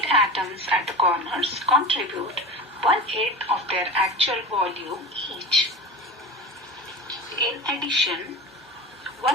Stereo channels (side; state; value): both; normal; correlation 0.30